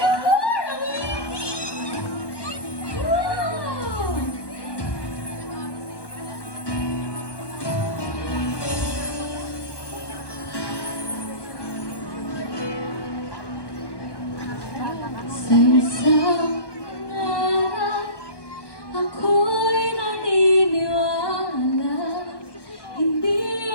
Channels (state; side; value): late; right; 1.1 ms